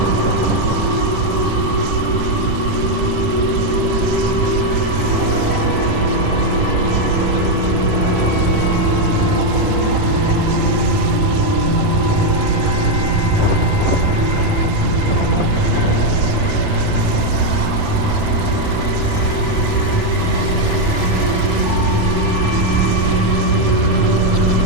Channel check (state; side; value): late; left; 10 ms